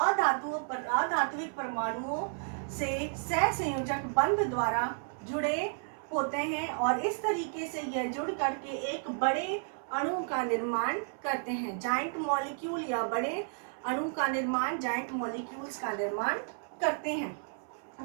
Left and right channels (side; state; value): left; silent; 56 dB below the other